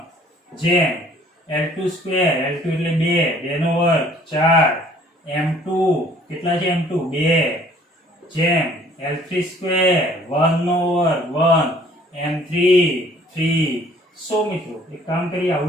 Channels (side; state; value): both; normal; correlation 0.57